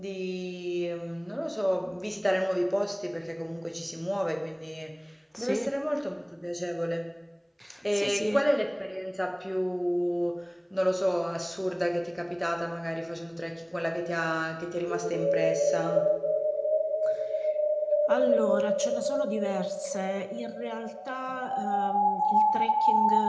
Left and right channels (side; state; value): both; identical; correlation 1.00